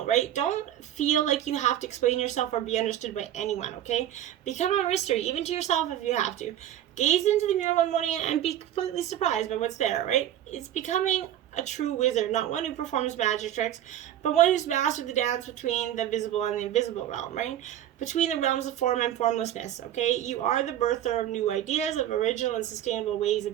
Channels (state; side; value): quieter; left; 11.7 dB